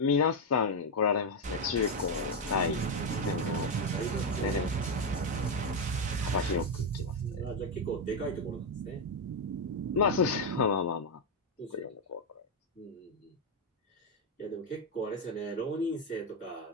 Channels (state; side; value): normal; both; correlation 0.04